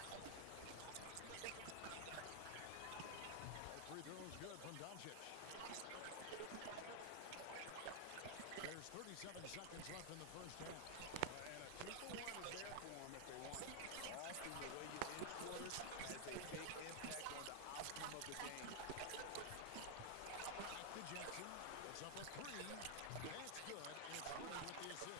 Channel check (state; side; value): different; both; correlation 0.00